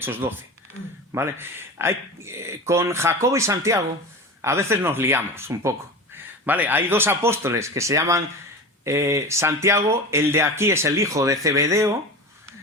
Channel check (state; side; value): normal; both; correlation 0.28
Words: 12. ¿Vale? Con Jacobo y Santiago a veces nos liamos un poco. ¿Vale? Hay 2 apóstoles que se llaman Santiago, el de aquí es el hijo de Zebedeo,